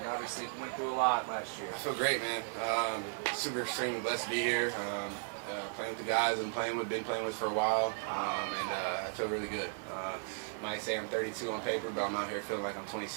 Obviously, went through a lot last year. I feel great, man. Super extremely blessed to be here. Playing with the guys been playing with for a while, and I feel really good. Might say I'm 32 on paper, but I'm out here feeling like I'm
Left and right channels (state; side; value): silent; left; 54 dB below the other